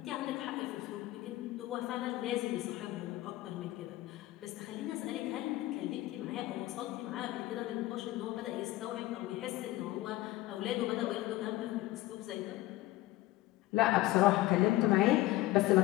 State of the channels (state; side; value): quieter; right; 17.1 dB